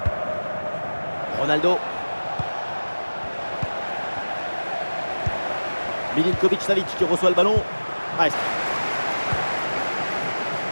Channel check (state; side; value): inverted; both; correlation -1.00